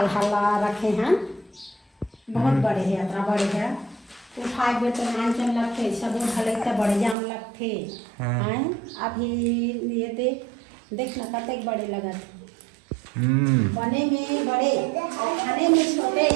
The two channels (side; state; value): left; drops out; at 7.2 s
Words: हल्ला रखे हैं, बहुत बड़े है यात्रा बड़े है। उठाए बेटे नान चल लगते सब भले तो बड़े जाम लगते हैं। अभी ये देख ना कतक बड़े लगत बने में बड़े और खाने में छोटे